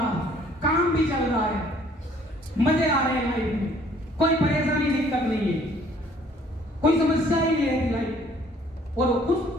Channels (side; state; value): both; normal; correlation 0.59